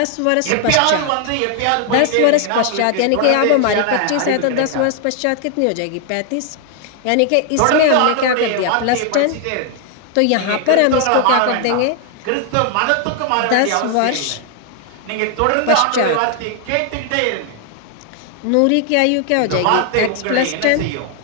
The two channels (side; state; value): both; different; correlation 0.00